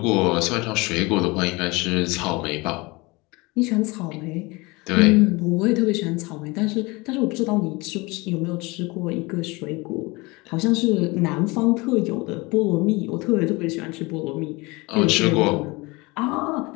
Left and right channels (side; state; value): right; quieter; 24.5 dB